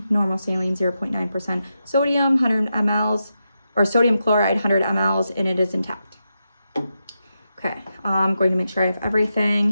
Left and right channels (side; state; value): both; inverted; correlation -0.88